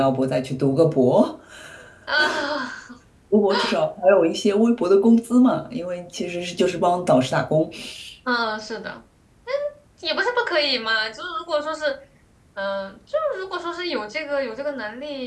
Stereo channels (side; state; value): both; identical; correlation 1.00